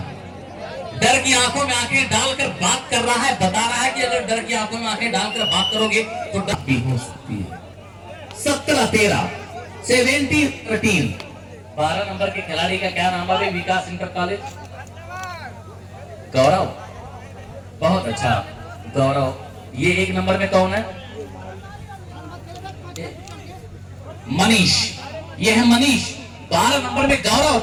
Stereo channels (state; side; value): identical; both; correlation 1.00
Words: डर की आंखों में आंखें डालकर बात कर रहा है, बता रहा है कि अगर डर की आंखों में आंखें डालकर बात करोगे तो डर भी हो सकती है। 17-13, 17-13। 12 नंबर के खिलाड़ी का क्या नाम है? विकास इंटर कॉलेज। गौरव, बहुत अच्छा गौरव। ये 1 नंबर में कौन है? मनीष। ये है मनीष। 12 नंबर में गौरव